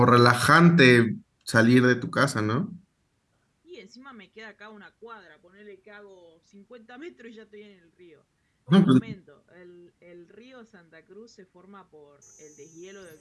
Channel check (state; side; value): identical; both; correlation 1.00